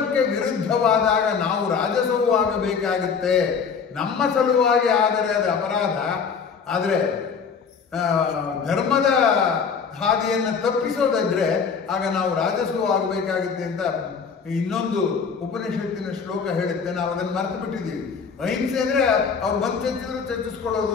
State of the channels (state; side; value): quieter; right; 6.0 dB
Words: ವಿರುದ್ಧವಾದಾಗ ನಾವು ರಾಜಸವೂ ಆಗಬೇಕಾಗುತ್ತೆ. ನಮ್ಮ ಸಲುವಾಗಿ ಆದರೆ ಅದು ಅಪರಾಧ. ಆದರೆ ಧರ್ಮದ ಹಾದಿಯನ್ನು ತಪ್ಪಿಸೋದಾದ್ರೆ ಆಗ ನಾವು ರಾಜಸವೂ ಆಗಬೇಕಾಗುತ್ತೆ ಅಂತ ಇನ್ನೊಂದು ಉಪನಿಷತ್ತಿನ ಶ್ಲೋಕ ಹೇಳುತ್ತೆ. ನಾವು ಅದನ್ನು ಮರೆತು ಬಿಟ್ಟಿದ್ದೀವಿ. ಅಹಿಂಸೆ ಅಂದ್ರೆ ಅವ್ರು ಬಂದು ಚರ್ಚಿಸ್ಕೊಳ್ಳೋದು